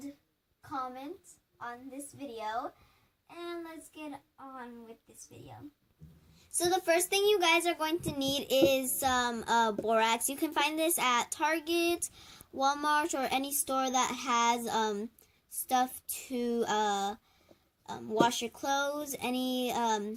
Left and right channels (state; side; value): identical; both; correlation 1.00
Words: comment on this video. And let's get on with this video. So the first thing you guys are going to need is some borax. You can find this at Target, Walmart, or any store that has stuff to wash your clothes, any